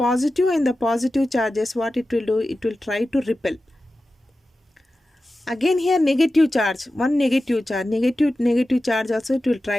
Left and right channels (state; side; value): normal; both; correlation 0.93